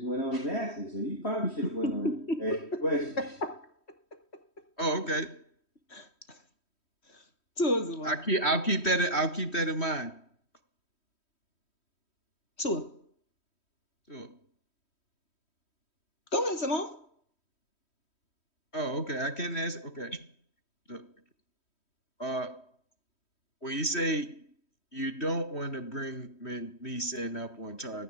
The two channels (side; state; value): right; late; 3.1 ms